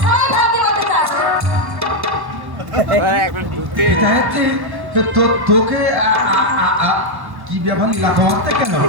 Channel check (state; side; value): late; left; 1.1 ms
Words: তুই ভাবি বলতে চাস? তোকে কি ব্যাপার এলাকা মারতে কেন?